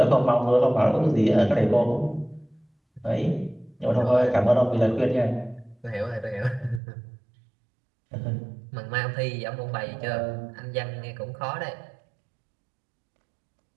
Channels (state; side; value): drops out; left; at 6.8 s